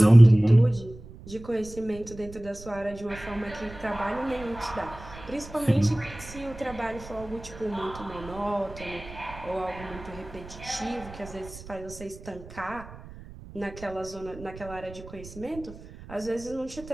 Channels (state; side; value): noise; right; rumble, 16 dB below the sound